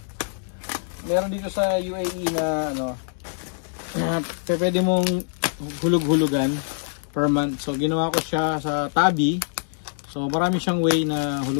meron dito sa UAE na pwede mong hulug-hulugan per month. So ginawa ko siya sa Tabi. So marami siyang way na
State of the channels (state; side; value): silent; right; digital silence